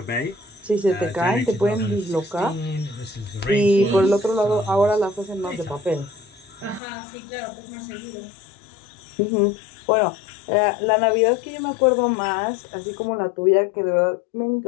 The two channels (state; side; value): drops out; right; at 6.8 s